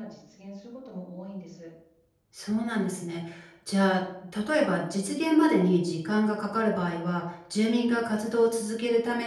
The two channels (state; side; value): identical; both; correlation 1.00